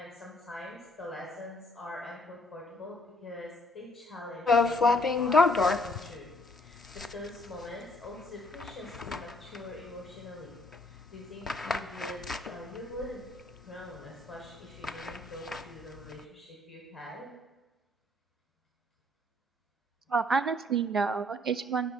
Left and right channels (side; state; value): both; normal; correlation 0.65